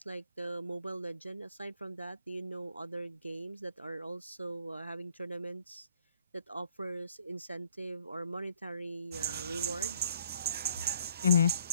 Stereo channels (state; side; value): inverted; both; correlation -0.64